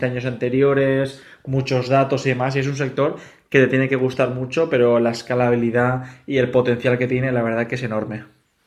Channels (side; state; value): both; identical; correlation 1.00